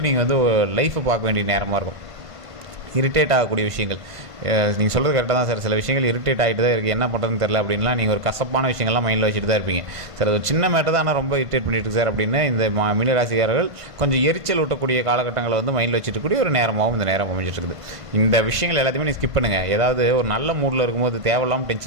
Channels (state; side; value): late; left; 1.5 ms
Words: நீங்கள் லைஃப்பை பார்க்க வேண்டிய நேரமாக இருக்கும். இரிட்டேட் ஆகக்கூடிய விஷயங்கள் நீங்கள் சொல்கிறது கரெக்டாக தான் சார். சில விஷயங்கள் இரிட்டேட் ஆகிட்டு தான் இருக்குது, என்ன பண்ணுறதுன்னு தெரில அப்படின்லாம் நீங்கள் ஒரு கசப்பான விஷயங்கள்லாம் மைண்டில் வச்சுட்டு தான் இருப்பீங்க. சார் அது சின்ன மேட்டர் தான், ஆனால் ரொம்ப இரிட்டேட் பண்ணிட்டு சார் அப்படின்னு இந்த மீனராசிக்காரர்கள் கொஞ்சம் எரிச்சல் ஊட்டக்கூடிய காலகட்டங்களை மைண்டில் வச்சுட்டு கூடிய ஒரு நேரமாகவும் இந்த நேரம் அமைஞ்சிட்டு இருக்குது. இந்த விஷயங்கள் எல்லாத்தையுமே நீங்கள் ஸ்கிப் பண்ணுங்கள். ஏதாவது ஒரு நல்ல மூடில் இருக்கும்போது தேவையில்லாமல்